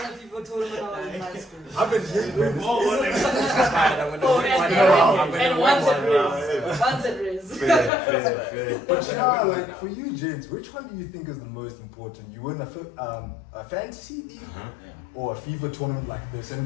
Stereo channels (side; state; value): right; drops out; at 7.9 s